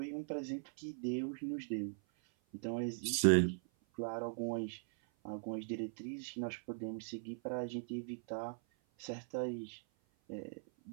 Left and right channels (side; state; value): left; silent; 51 dB below the other